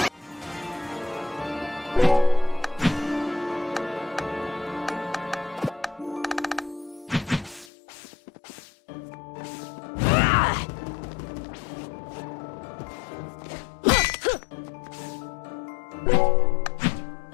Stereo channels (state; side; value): drops out; right; at 7.7 s